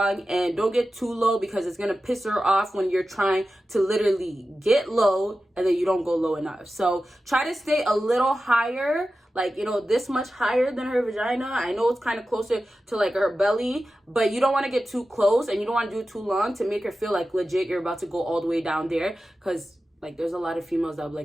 and don't get too low because it's going to piss her off when you're trying to literally get low and then you don't go low enough. So try to stay a little higher, like, you know, this much higher than her vagina. I know it's kind of closer to like her belly, but you don't want to get too close and you don't want to do it too long to make her feel like legit you're about to go all the way down there. Because like there's a lot of females that are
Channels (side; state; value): both; normal; correlation 0.93